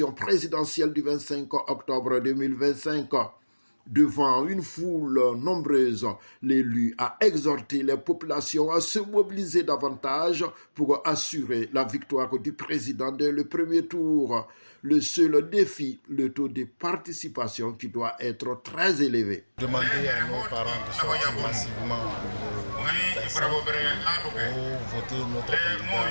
présidentielle du 25 octobre 2025. Devant une foule nombreuse, l'élu a exhorté les populations à se mobiliser davantage pour assurer la victoire du président dès le premier tour. Le seul défi, le taux de participation qui doit être très élevé. Demander à nos parents de sortir massivement pour voter notre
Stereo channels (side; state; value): both; inverted; correlation -1.00